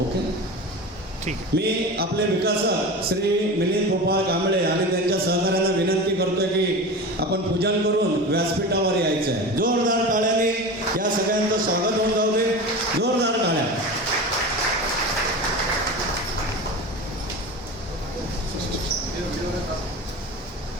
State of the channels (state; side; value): normal; both; correlation 0.29